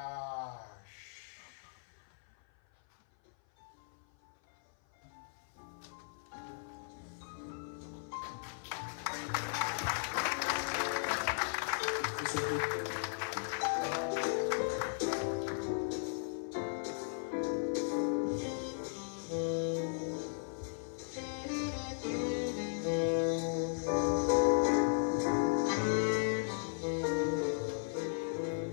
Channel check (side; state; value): right; silent; 53 dB below the other